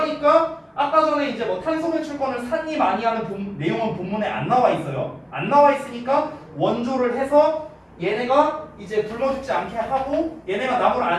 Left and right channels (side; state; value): both; identical; correlation 1.00